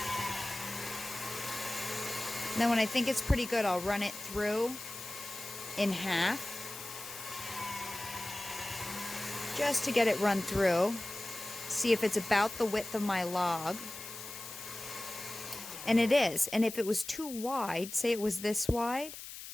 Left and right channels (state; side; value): noise; left; hiss, 11 dB below the sound